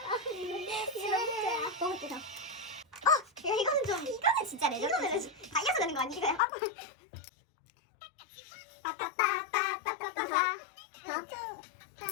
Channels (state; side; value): drops out; right; at 6.4 s